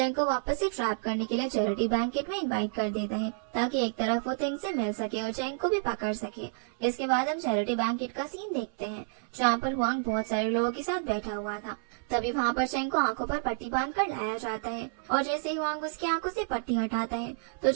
को वापस से ट्रैप करने के लिए चैरिटी बैंकेट में इनवाइट कर देता है ताकि एक तरफ वो तिंग से मिल सके और चेंग को भी पकड़ सके। इसके बाद हम चैरिटी बैंकेट का सीन देखते हैं, जहाँ पर हुआंग बहुत सारे लोगों के साथ बैठा हुआ था। तभी वहाँ पर चेंग को आंखों पर पट्टी बांधकर लाया जाता है और जैसे ही हुआंग उसकी आंखों से पट्टी हटाता है तो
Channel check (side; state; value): left; silent; 58 dB below the other